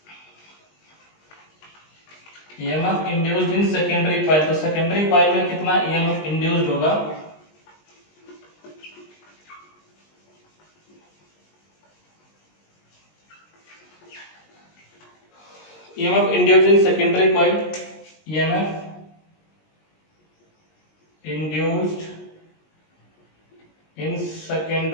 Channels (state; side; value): late; right; 19 ms